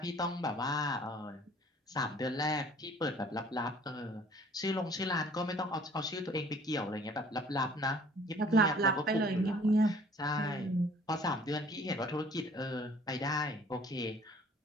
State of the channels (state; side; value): normal; both; correlation 0.54